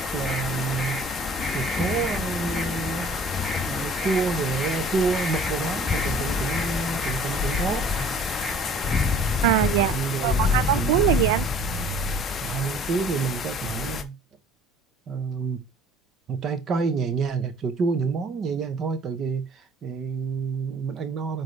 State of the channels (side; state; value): both; normal; correlation 0.50